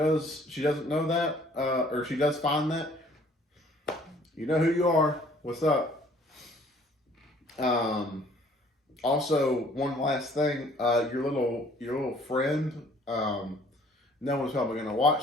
know that, or she does find that. You know who you are. What's up? Also, one last thing. Your little friend. No one's probably gonna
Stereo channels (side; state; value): both; normal; correlation 0.57